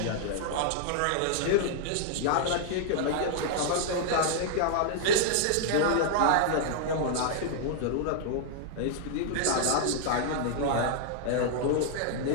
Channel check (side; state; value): both; different; correlation -0.01